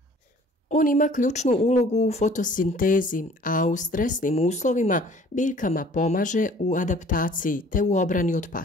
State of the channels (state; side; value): normal; both; correlation 0.52